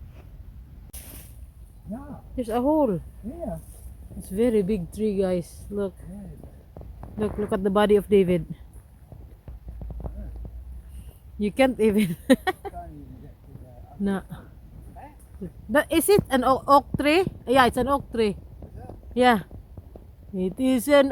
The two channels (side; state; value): both; identical; correlation 1.00